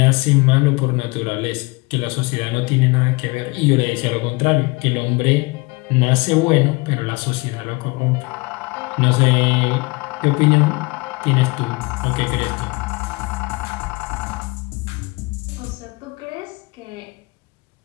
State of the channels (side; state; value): right; quieter; 25.8 dB